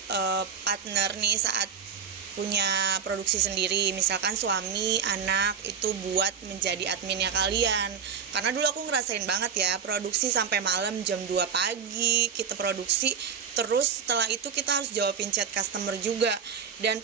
partner nih saat punya produksi sendiri, misalkan suami, anak itu buat menjadi adminnya kalian. Karena dulu aku ngerasain banget ya, produksi sampai malam jam 2 pagi kita produksi, terus setelah itu kita harus jawabin chat customer juga. Dan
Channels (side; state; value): left; quieter; 7.0 dB